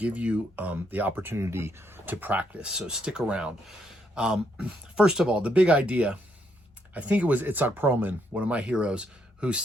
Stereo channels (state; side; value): normal; both; correlation 0.75